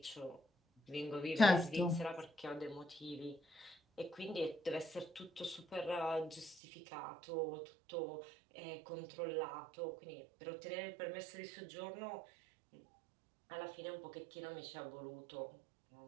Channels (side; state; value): left; drops out; at 6.6 s